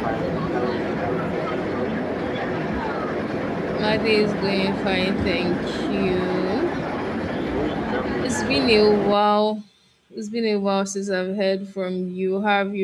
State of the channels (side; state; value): both; identical; correlation 1.00